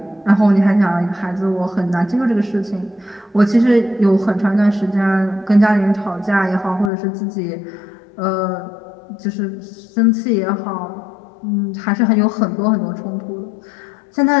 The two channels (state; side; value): drops out; right; at 6.9 s